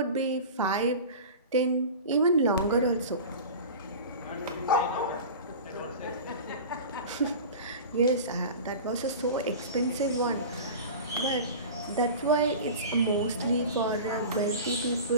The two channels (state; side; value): inverted; both; correlation -0.34